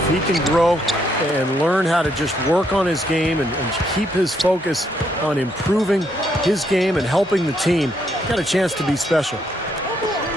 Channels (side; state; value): both; normal; correlation 0.73